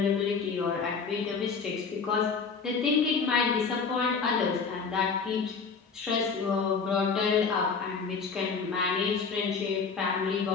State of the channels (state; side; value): quieter; right; 5.3 dB